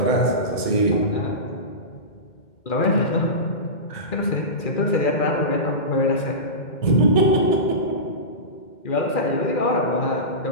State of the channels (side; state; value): right; late; 2.1 ms